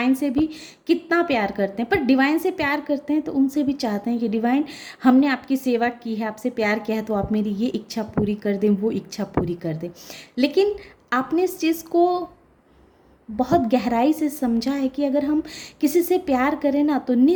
से भी कितना प्यार करते हैं, पर डिवाइन से प्यार करते हैं तो उनसे भी चाहते हैं कि डिवाइन, हमने आपकी सेवा की है, आपसे प्यार किया है, तो आप मेरी ये इच्छा पूरी कर दें, वो इच्छा पूरी कर दें। लेकिन आपने इस चीज़ को बहुत गहराई से समझा है कि अगर हम किसी से प्यार करें ना तो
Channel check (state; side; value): identical; both; correlation 1.00